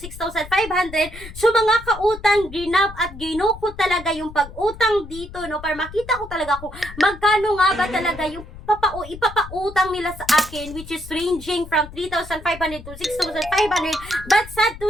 So mga kautang, ginab at gino ko talaga yung pag-utang dito para makita ko talaga kung magkano nga ba talaga yung ipapautang nila sa akin, which is ranging from 3,500 to 6,500. But sad to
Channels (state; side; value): noise; left; rumble, 15 dB below the sound